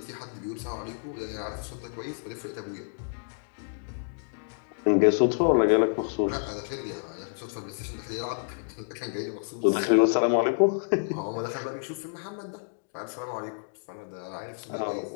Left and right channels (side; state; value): right; silent; digital silence